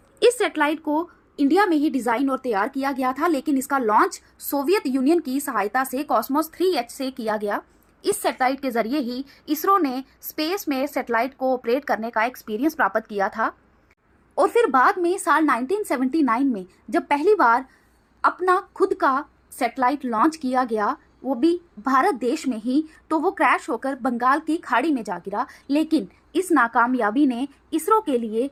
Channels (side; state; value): both; identical; correlation 1.00